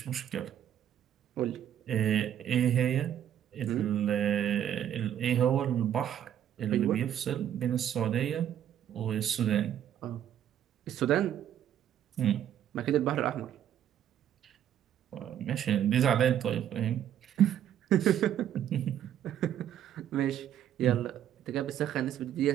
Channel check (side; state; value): left; quieter; 10.4 dB